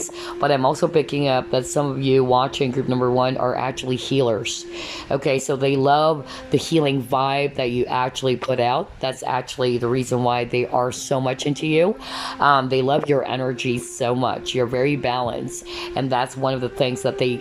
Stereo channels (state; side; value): identical; both; correlation 1.00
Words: But I'm also picking up that some of you watching group number one are actually healers. Okay, so they love the healing vibe that you actually put out. That's actually the reason why they are so much into you. They love your energy so much. You're very balanced. And that's one of the things that they